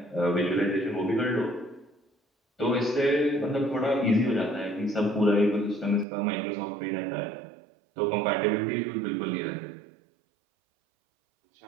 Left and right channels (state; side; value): drops out; left; at 6.1 s